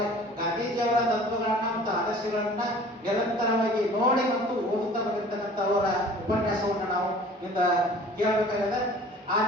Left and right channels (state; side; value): normal; both; correlation 0.47